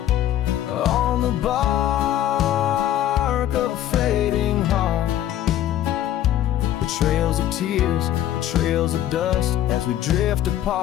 on the bark of a fading heart, the trails of tears, the trails of dust, as we drift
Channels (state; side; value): quieter; right; 12.2 dB